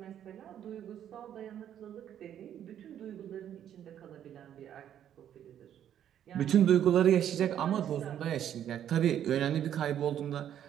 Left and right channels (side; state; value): left; quieter; 10.2 dB